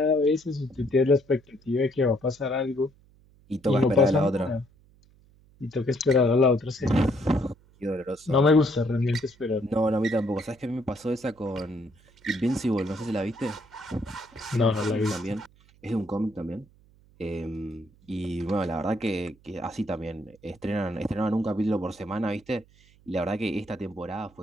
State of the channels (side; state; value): right; noise; hum, 29 dB below the sound